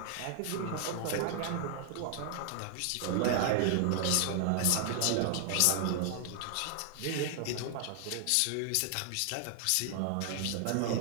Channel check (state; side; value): different; both; correlation 0.00